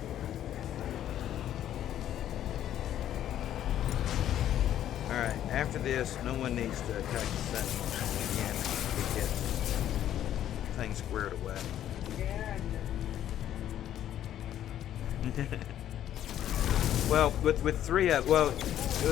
All right. After this, no one needs to attack the sentinels again. We get things squared away. Well, with three, there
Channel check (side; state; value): right; quieter; 11.3 dB